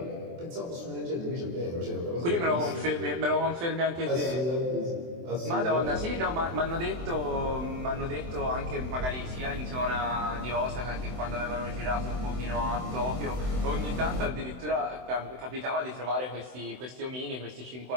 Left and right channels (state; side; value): late; left; 24 ms